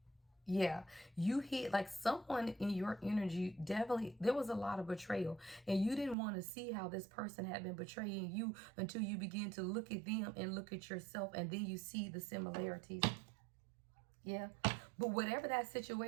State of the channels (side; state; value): left; drops out; at 6.2 s